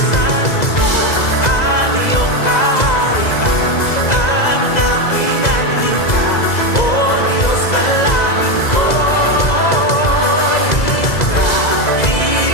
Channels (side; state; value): right; late; 2.0 ms